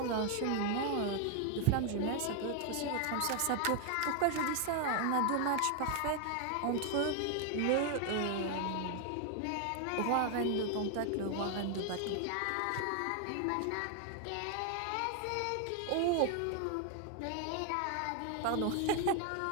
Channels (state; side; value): different; both; correlation 0.00